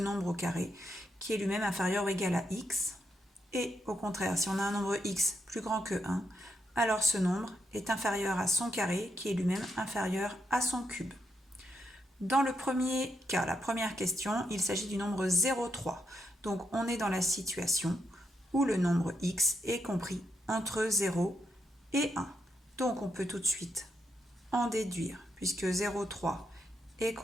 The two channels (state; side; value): normal; both; correlation 0.80